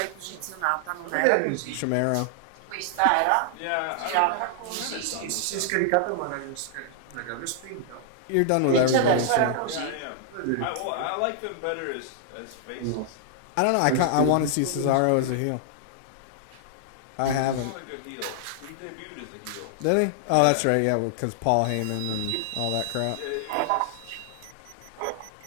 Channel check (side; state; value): both; different; correlation 0.00